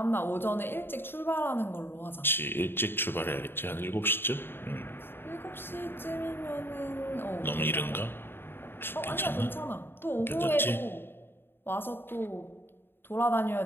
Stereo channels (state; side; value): late; right; 0.10 ms